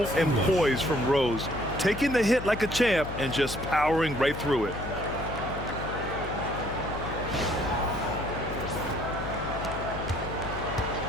and poise from Rose. Taking the hit like a champ and just powering right through it.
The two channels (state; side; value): noise; left; hum, 8 dB below the sound